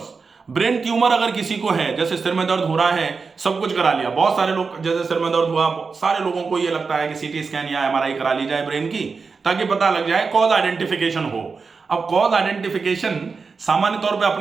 ब्रेन ट्यूमर अगर किसी को है, जैसे सिर में दर्द हो रहा है, सब कुछ करा लिया, बहुत सारे लोग जैसे सिर में दर्द हुआ, सारे लोगों को ये लगता है कि सीटी स्कैन या एमआरआई करा ली जाए ब्रेन की, ताकि पता लग जाए, कॉज आइडेंटिफिकेशन हो। अब कॉज आइडेंटिफिकेशन सामान्य तौर पे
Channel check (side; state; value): left; quieter; 4.8 dB